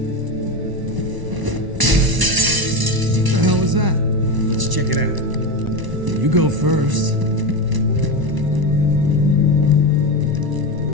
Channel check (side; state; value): left; late; 1.0 ms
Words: What the hell was that? Let's check it out. You go first.